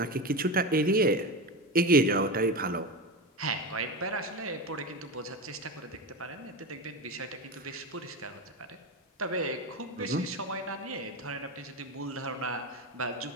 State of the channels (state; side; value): normal; both; correlation 0.20